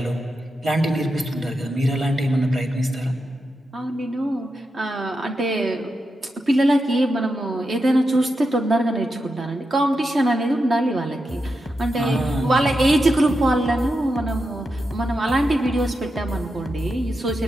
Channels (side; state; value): both; normal; correlation 0.87